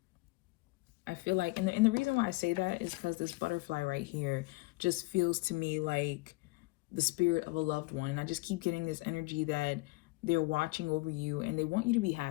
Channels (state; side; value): quieter; right; 23.5 dB